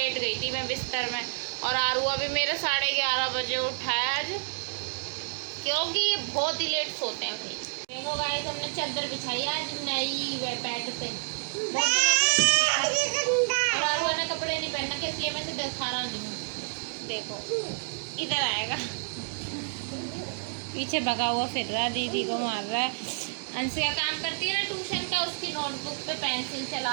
गई थी मैं बिस्तर में। और आरुआ भी मेरे 11:30 बजे उठाया आज, क्योंकि ये बहुत ही लेट सोते हैं भाई। देखो गाइस हमने चादर बिछाई आज नई बेड पे, बहुत दिनों से। और आरुआ ने कपड़े नहीं पहनना, इसलिए मैं इसे दिखा रहा नहीं हूँ। देखो इधर आएगा, पीछे भगा हुआ फिर रहा, दीदी को मार रहा है। अंशिका काम करती है ना ट्यूशन का, उसकी नोटबुक पे पेंसिल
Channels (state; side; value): silent; left; digital silence